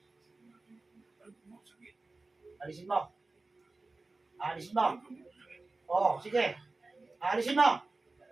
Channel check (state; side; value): quieter; left; 3.4 dB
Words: Alisin mo! Alisin mo! Oo, sige! Alisin mo!